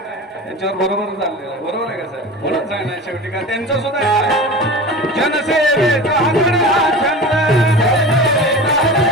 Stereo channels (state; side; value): normal; both; correlation 0.32